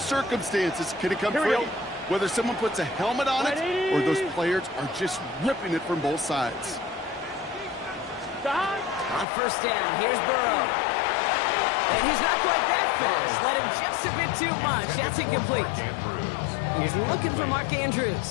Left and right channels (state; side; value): drops out; right; at 9.2 s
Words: can it come free. Whether someone puts a helmet on it or those players are just ripping it from both sides. On first down, here's Burrow. And he's not quite that fast. Let him just a bit too much. That's incomplete. He's looking for Mark